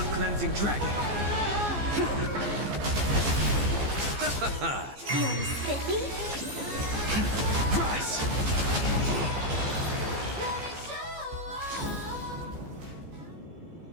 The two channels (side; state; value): left; late; 15 ms